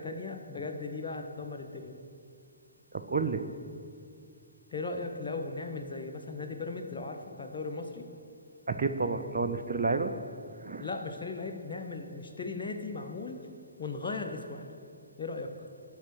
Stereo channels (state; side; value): inverted; both; correlation -0.39